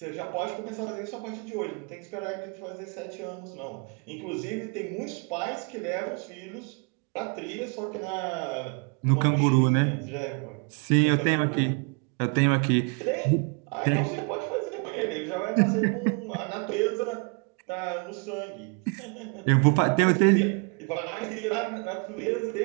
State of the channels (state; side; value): quieter; left; 34.9 dB